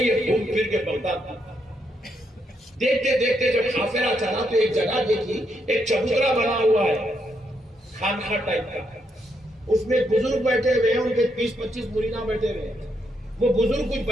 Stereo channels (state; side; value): normal; both; correlation 0.78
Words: ہے گھوم پھر کے بغداد. دیکھتے دیکھتے جب قافلہ چلا تو ایک جگہ دیکھی، ایک چبوترا بنا ہوا ہے خانقاہ ٹائپ کا. اس میں بزرگ بیٹھے ہوئے ہیں، ان کے 20-25 مریداں بیٹھے ہوئے ہیں. وہ بزرگ کچھ